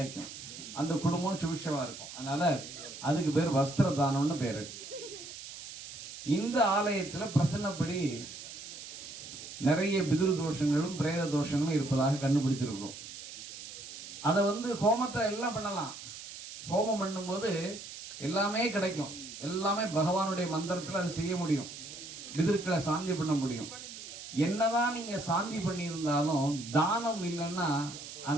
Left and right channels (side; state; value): right; noise; hiss, 12 dB below the sound